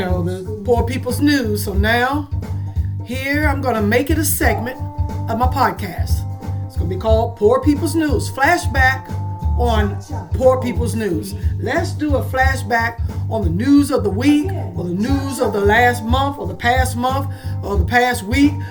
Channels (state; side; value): identical; both; correlation 1.00